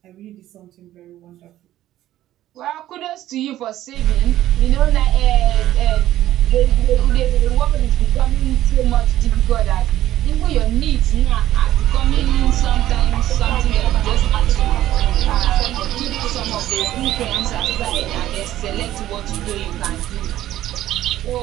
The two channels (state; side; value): quieter; left; 13.6 dB